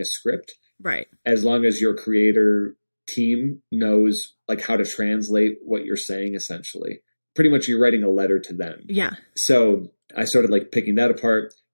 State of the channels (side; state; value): both; inverted; correlation -1.00